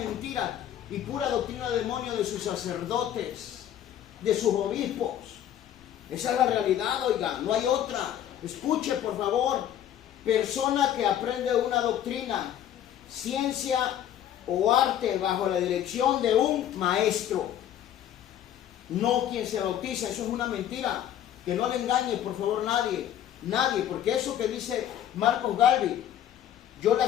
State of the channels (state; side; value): quieter; right; 10.8 dB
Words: y pura doctrina de demonio de sus sacerdotes, de sus obispos. Esa es la realidad, oiga, no hay otra. Escuche, por favor. Persona que aprende una doctrina, ciencia o arte bajo la dirección de un maestro. No quien se bautiza, eso es una mentira. Que no le engañe, por favor, nadie, porque eso que dice Marcos Galvin, yo le